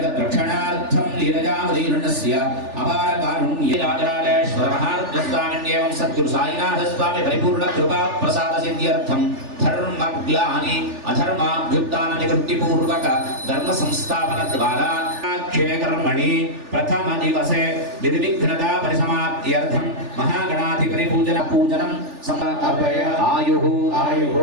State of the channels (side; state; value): left; late; 3.4 ms